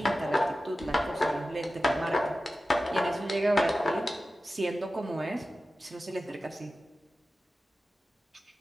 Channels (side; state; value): both; normal; correlation 0.94